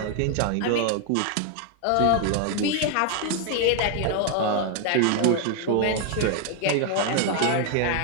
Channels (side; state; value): both; different; correlation 0.01